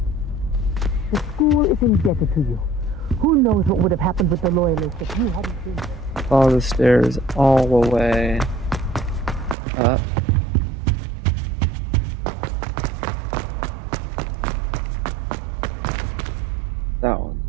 The school is indebted to you. Who knows what would have happened with the loyalists if you hadn't been there. Follow the stairs all the way up. That one.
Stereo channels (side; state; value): left; drops out; at 9.6 s